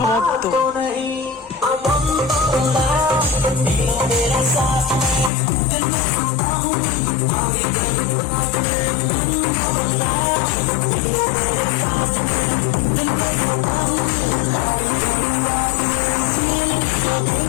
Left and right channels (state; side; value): drops out; right; at 5.3 s